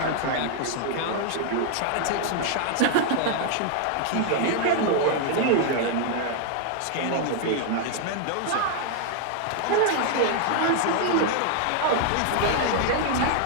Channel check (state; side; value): different; both; correlation 0.00